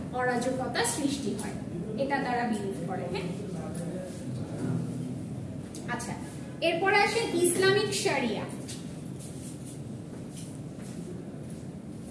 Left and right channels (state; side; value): identical; both; correlation 1.00